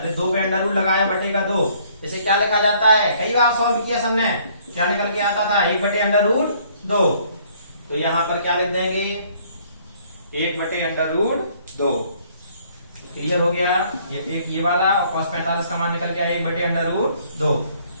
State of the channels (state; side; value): inverted; both; correlation -0.61